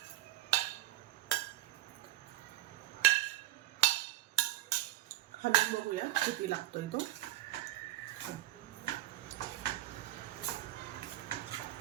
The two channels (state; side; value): quieter; left; 14.9 dB